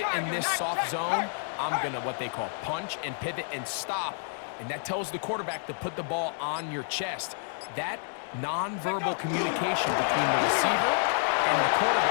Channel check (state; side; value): silent; right; digital silence